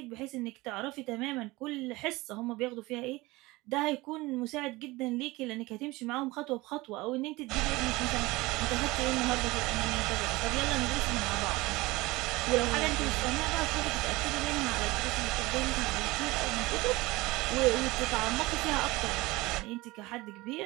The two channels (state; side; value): quieter; left; 21.1 dB